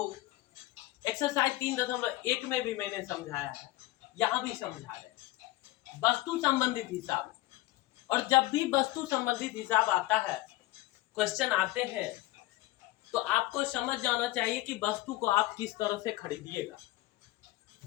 एक्सरसाइज 3.1 में भी मैंने समझाया है, यहां भी समझा रहे। वस्तु संबंधित हिसाब। और जब भी वस्तु संबंधित हिसाब आता है, क्वेश्चन आते हैं, तो आपको समझ जाना चाहिए कि वस्तु को आप किस तरह से खरीदिएगा।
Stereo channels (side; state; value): right; quieter; 17.9 dB